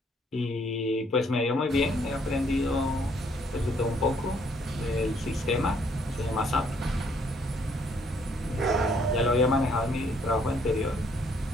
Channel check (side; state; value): both; normal; correlation 0.66